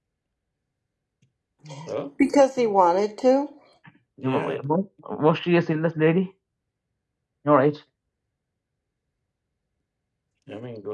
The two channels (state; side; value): identical; both; correlation 1.00